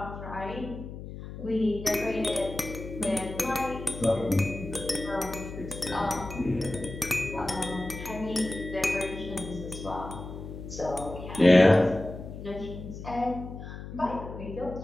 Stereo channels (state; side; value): noise; left; hum, 10 dB below the sound